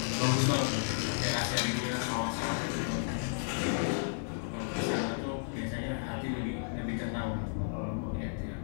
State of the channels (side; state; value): right; silent; digital silence